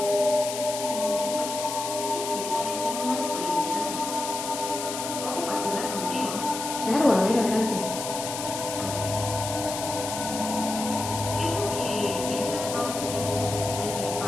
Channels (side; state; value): left; noise; hiss, 6 dB below the sound